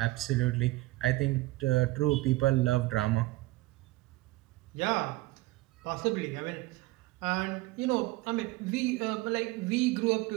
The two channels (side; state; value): left; quieter; 20.2 dB